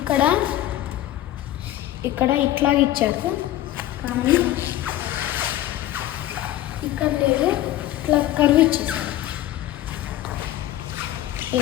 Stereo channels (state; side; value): quieter; right; 14.0 dB